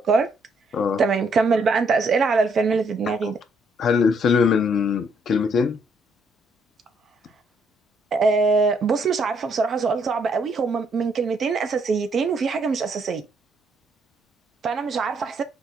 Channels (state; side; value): normal; both; correlation 0.70